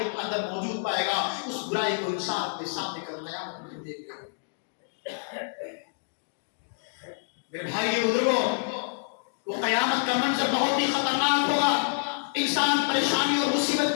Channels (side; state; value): right; silent; digital silence